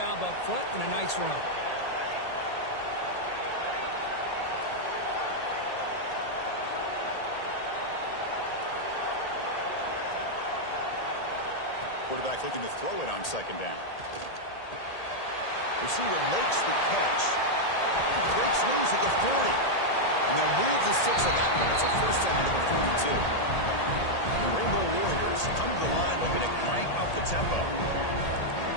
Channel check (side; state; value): right; late; 1.8 ms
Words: up front and a nice run. Quarterback looking to throw it on second down. Receiver makes the catch. Breaks loose at the 40. And they'll move the 6 on that one. It's a first down to the 42. The Rainbow Warriors come to the line looking to crank up the tempo.